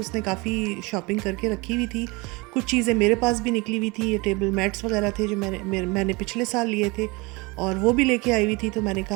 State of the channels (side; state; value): left; quieter; 25.6 dB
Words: काफ़ी शॉपिंग करके रखी हुई थी। कुछ चीज़ें मेरे पास भी निकली हुई थी, ये टेबल मैट्स वगैरह थे जो मैंने पिछले साल लिए थे और वो भी लेके आई हुई थी। तो मैंने